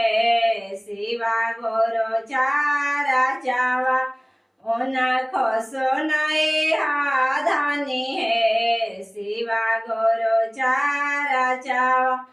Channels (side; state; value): both; identical; correlation 1.00